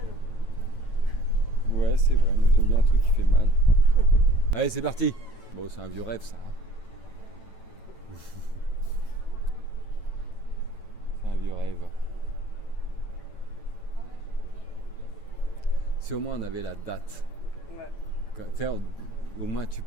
Ouais, c'est vrai, mais j'aime bien un truc qui fait mal. Allez, c'est parti! Bon, c'est un vieux rêve ça. C'est un vieux rêve. Si au moins on avait la date. Ouais. Au moins tu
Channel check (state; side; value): late; right; 9.0 ms